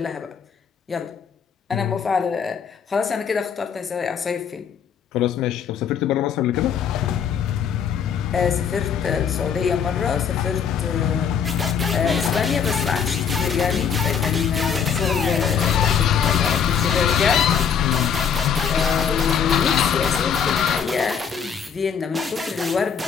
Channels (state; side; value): quieter; right; 7.3 dB